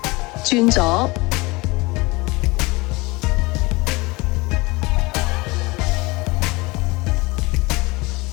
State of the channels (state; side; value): quieter; right; 23.7 dB